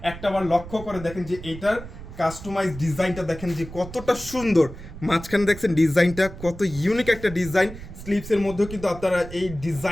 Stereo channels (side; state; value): right; noise; rumble, 13 dB below the sound